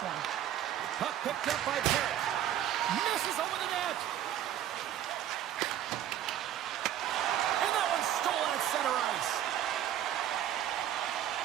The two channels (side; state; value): left; quieter; 11.3 dB